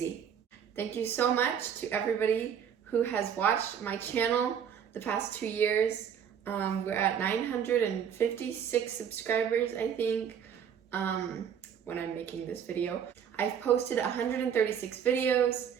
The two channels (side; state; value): left; quieter; 8.2 dB